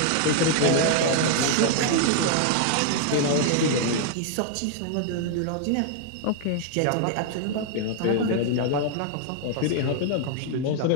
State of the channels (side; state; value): both; different; correlation 0.00